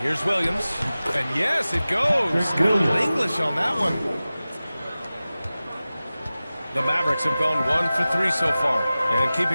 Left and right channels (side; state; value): both; inverted; correlation -0.97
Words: Williams. And yes, it goes. Good English on that one. The Mavericks have gone 1 for 3 so far. And